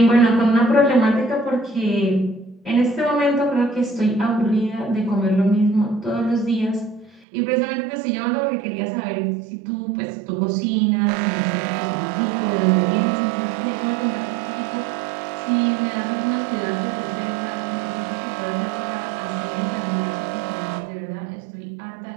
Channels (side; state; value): left; drops out; at 7.2 s